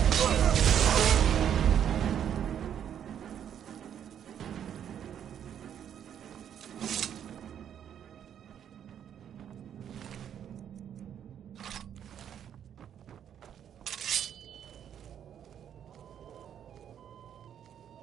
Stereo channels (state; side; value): quieter; left; 9.3 dB